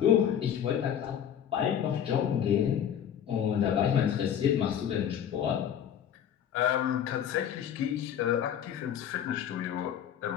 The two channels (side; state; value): right; quieter; 9.3 dB